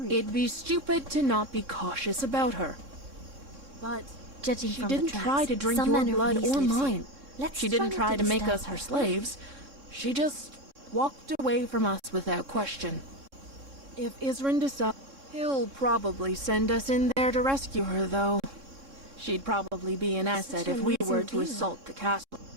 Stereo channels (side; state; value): left; late; 3.6 ms